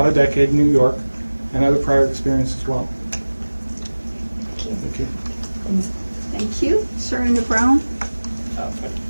a decade in New York and other prior experience as well. Thank you. Thank you. Sir in the brown?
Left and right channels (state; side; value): inverted; both; correlation -1.00